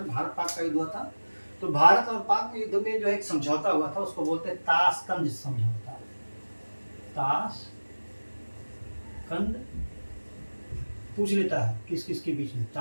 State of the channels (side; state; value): both; inverted; correlation -1.00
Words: भारत पाक का युद्ध हुआ था। तो भारत और पाक में युद्ध में जो एक समझौता हुआ था उसको बोलते हैं ताशकंद समझौता। ताशकंद पूछ लेता है किस किस के बीच में,